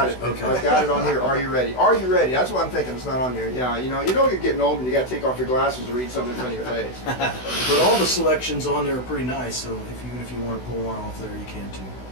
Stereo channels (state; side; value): late; right; 16 ms